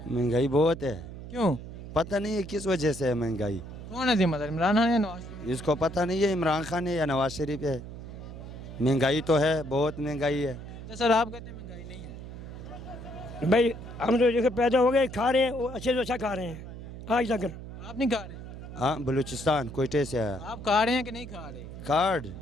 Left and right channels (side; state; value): right; noise; hum, 11 dB below the sound